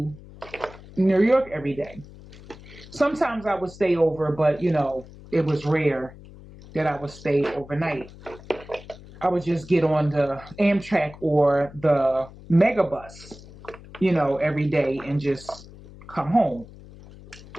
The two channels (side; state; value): left; noise; hum, 19 dB below the sound